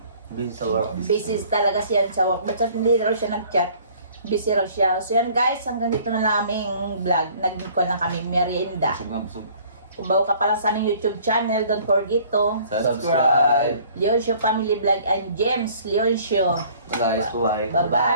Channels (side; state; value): both; inverted; correlation -0.54